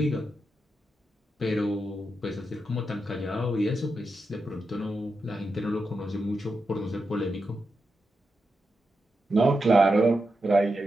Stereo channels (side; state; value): both; normal; correlation 0.87